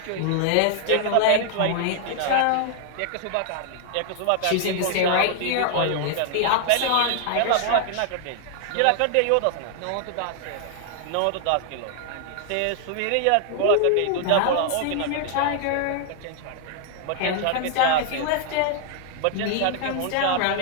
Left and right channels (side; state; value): both; different; correlation 0.00